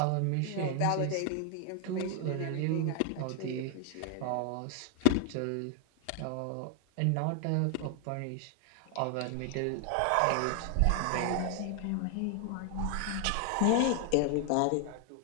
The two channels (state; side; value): different; both; correlation 0.00